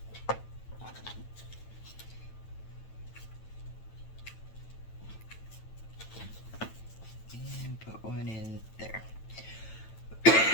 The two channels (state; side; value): late; right; 9.0 ms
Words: One in there.